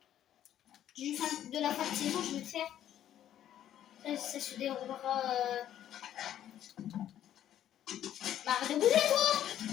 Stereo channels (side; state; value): right; quieter; 11.2 dB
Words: de la fin de saison, je vais le faire. Ça se déroulera. Arrête de bouger, toi!